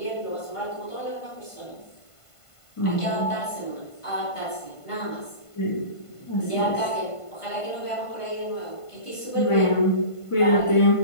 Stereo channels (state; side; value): late; right; 1.5 ms